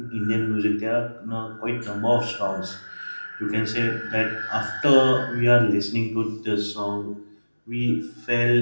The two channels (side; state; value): both; inverted; correlation -1.00